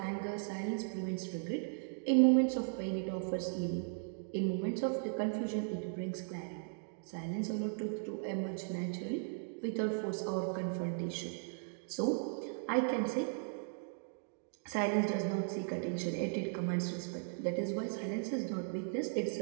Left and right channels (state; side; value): silent; left; digital silence